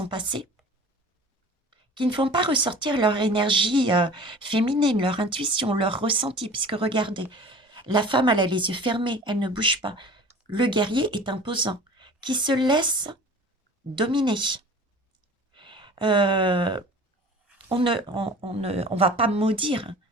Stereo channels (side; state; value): both; normal; correlation 0.42